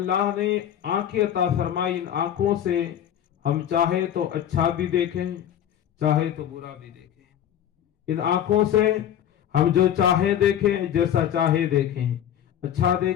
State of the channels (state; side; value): quieter; right; 10.2 dB